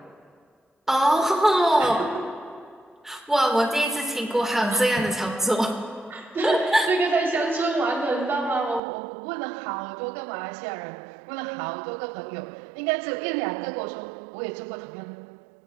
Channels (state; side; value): drops out; left; at 8.8 s